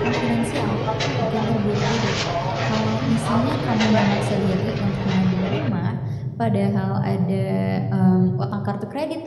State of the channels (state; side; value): identical; both; correlation 1.00